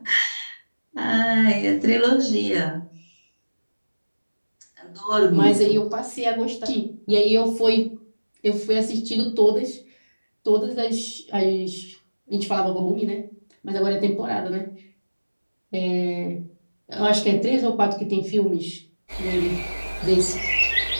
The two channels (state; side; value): inverted; both; correlation -1.00